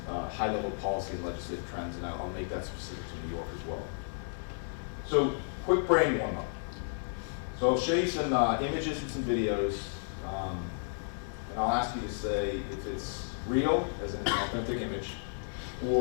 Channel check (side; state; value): right; silent; digital silence